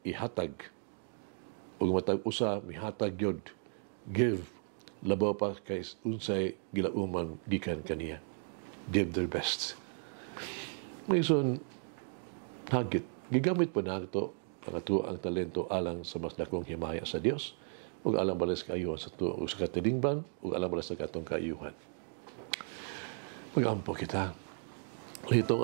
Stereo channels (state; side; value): silent; left; 54 dB below the other